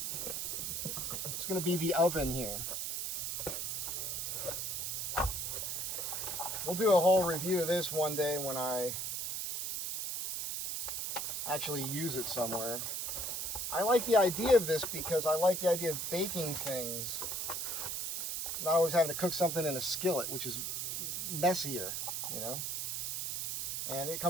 going to be the oven here. We'll do a whole review of this one day when I actually use it somewhere. I like the idea of this because I like the idea of baking things. Not always having to cook something in a skillet, which is messier, you know. And it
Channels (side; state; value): right; noise; hiss, 2 dB below the sound